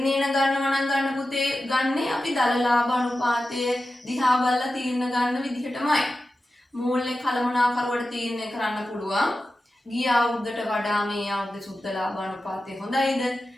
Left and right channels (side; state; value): both; normal; correlation 0.93